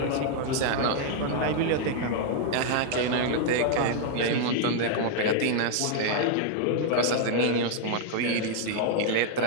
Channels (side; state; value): both; different; correlation 0.00